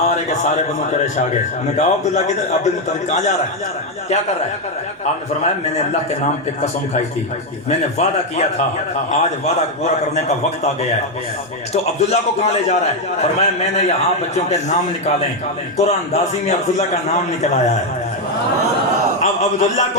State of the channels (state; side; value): normal; both; correlation 0.04